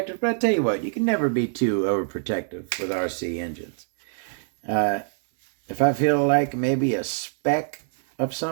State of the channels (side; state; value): left; silent; 61 dB below the other